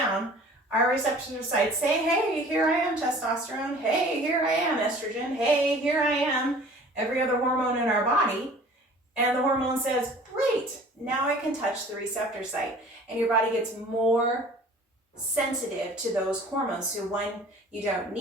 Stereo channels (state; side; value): normal; both; correlation 0.47